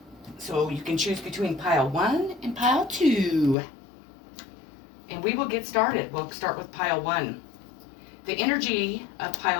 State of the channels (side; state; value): right; drops out; at 3.6 s